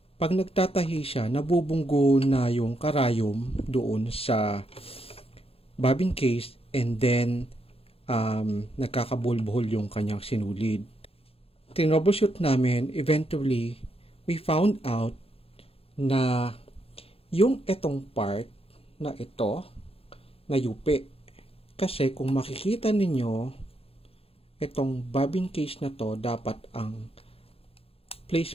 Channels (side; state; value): right; late; 0.28 ms